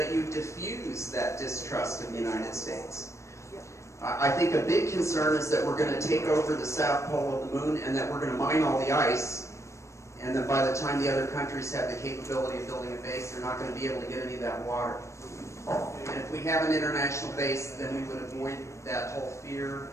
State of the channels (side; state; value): right; late; 0.14 ms